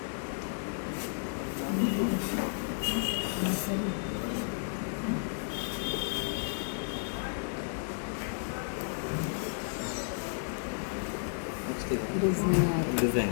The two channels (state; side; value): silent; right; digital silence